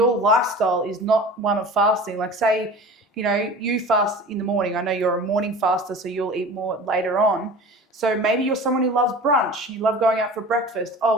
lifestyle is not one of fasting, like say, you know, you fast in the morning. I know you're a morning faster, so you'll eat more later on. So maybe you're someone who loves brunch. You love going out for breakfast.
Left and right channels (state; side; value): normal; both; correlation 0.38